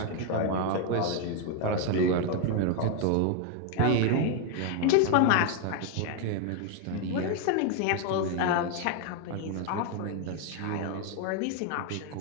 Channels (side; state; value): both; different; correlation 0.01